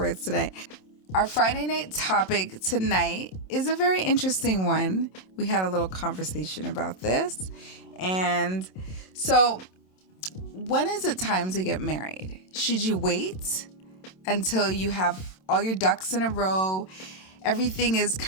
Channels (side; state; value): right; late; 27 ms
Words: today. Our Friday night topic tonight is a very interesting one. We had a little conversation about this. And so, when is it time to get married? Should you wait until you have all your ducks in a row? Everything is